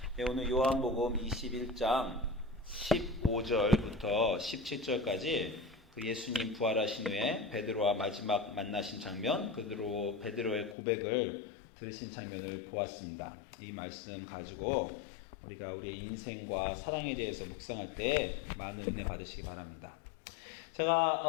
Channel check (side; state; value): right; drops out; at 10.8 s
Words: 네, 오늘 요한복음 21장 15절부터 17절까지 그 예수님 부활하신 후에 베드로와 마지막 만나신 장면, 그대로 베드로의 고백을 들으신 장면을 보았습니다. 이 말씀 가지고 우리가 우리의 인생과 사랑에 대해서 묵상할 때 많은 은혜 받으시기 바랍니다.